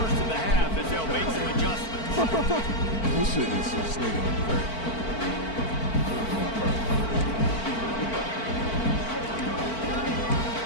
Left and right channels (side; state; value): right; late; 4.5 ms